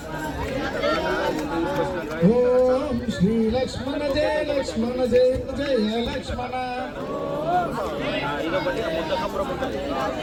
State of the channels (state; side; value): identical; both; correlation 1.00